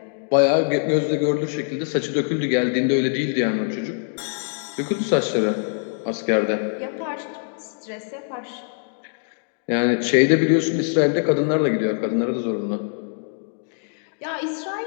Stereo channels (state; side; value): silent; right; digital silence